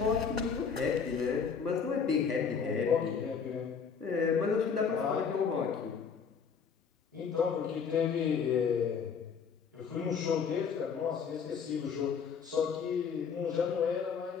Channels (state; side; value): quieter; right; 6.3 dB